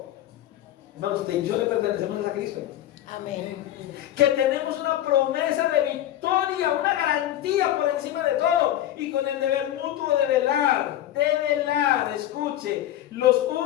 Hermanos, usted y yo le pertenecemos a Cristo. Amén. Que tenemos una promesa de victoria, una garantía por encima de todo, y con el deber mutuo de velar, escuche, los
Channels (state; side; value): quieter; right; 12.6 dB